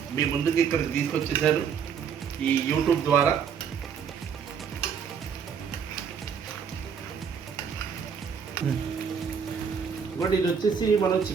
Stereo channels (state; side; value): quieter; left; 7.0 dB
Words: మీ ముందుకి ఇక్కడికి తీసుకొచ్చేసాను ఈ యూట్యూబ్ ద్వారా. ఇంకోటి ఇది వచ్చేసి మనం